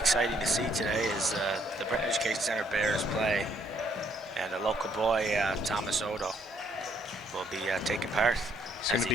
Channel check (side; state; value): both; normal; correlation 0.69